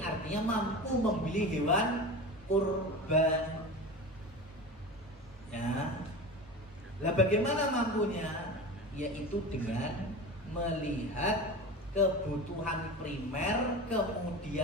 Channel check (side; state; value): both; normal; correlation 0.30